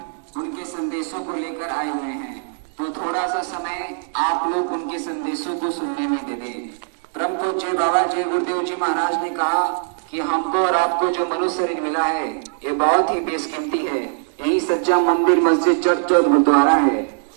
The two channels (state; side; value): silent; left; digital silence